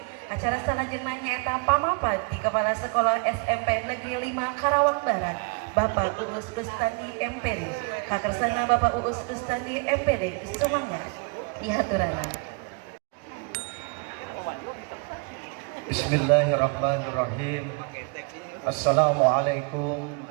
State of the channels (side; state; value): left; quieter; 33.5 dB